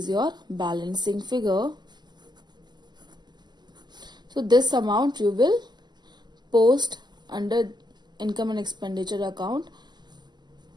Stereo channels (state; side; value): late; left; 0.21 ms